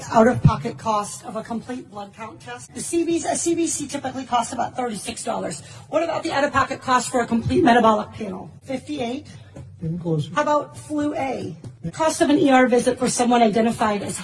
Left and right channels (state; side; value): identical; both; correlation 1.00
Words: out-of-pocket cost of a complete blood count test? A CBC typically costs about $36. What about the out-of-pocket cost for a complete metabolic panel? $58. How about flu A? Cost of an ER visit for someone identified as